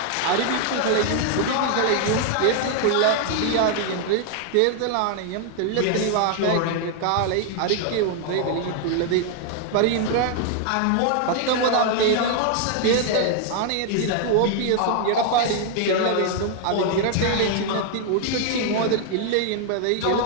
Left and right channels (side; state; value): both; different; correlation 0.00